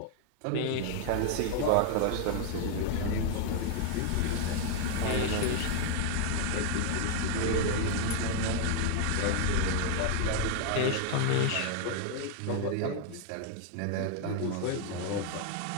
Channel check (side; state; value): both; different; correlation 0.00